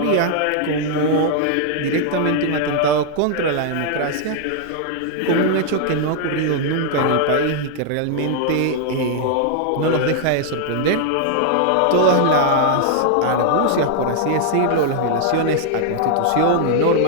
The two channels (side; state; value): both; different; correlation -0.01